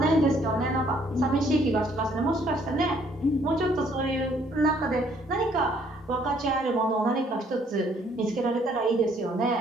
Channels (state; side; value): normal; both; correlation 0.64